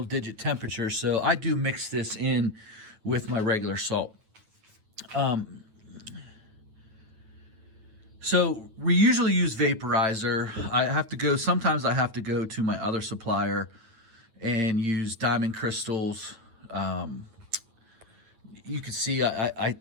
digit temperatures, so I do mix this in with my regular salt. So we usually use vaporizer. Sometimes I have to go to my other supplier and use Diamond Crystals. You can see I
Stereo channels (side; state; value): left; late; 9.1 ms